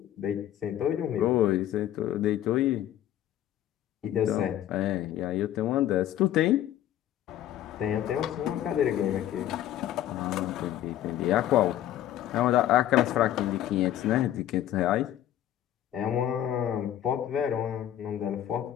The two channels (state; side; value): quieter; right; 12.1 dB